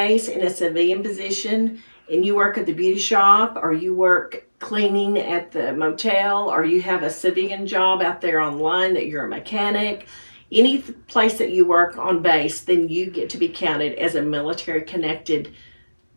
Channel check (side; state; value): both; inverted; correlation -1.00